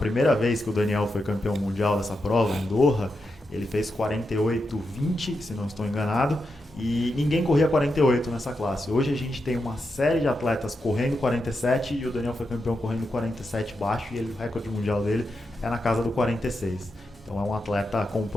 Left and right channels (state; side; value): normal; both; correlation 0.86